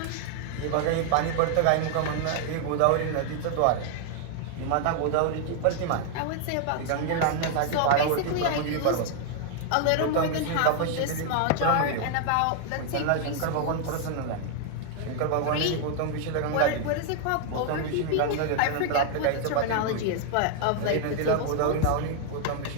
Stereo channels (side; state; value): both; different; correlation 0.00